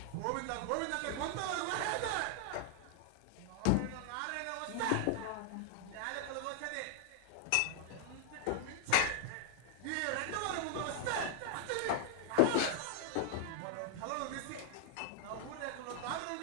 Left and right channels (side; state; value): both; different; correlation 0.00